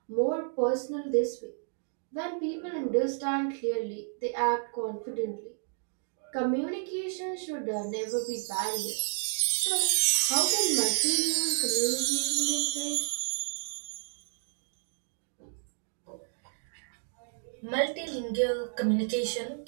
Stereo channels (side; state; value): left; silent; digital silence